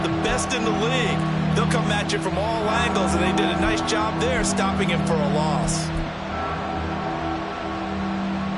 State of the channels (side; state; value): both; identical; correlation 1.00